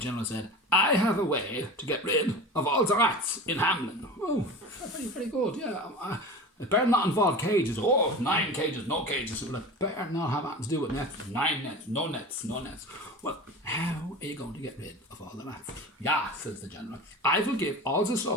said, I have a way to get rid of all the rats in Hamelin. Oh, very, very good, yeah. It better not involve cages. Oh, 9 cages, no cages. Well, it better not have anything to do with nets. 9 nets, no nets. Well, how are you going to get rid of all the rats? Yeah, says the general. I will give all the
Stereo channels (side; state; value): both; normal; correlation 0.32